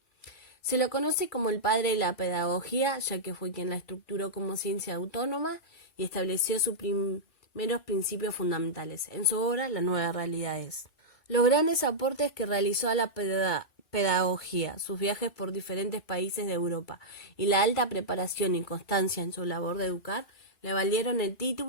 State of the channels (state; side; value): late; right; 2.2 ms